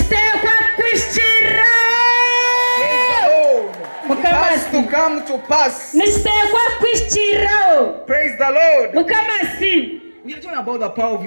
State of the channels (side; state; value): both; inverted; correlation -1.00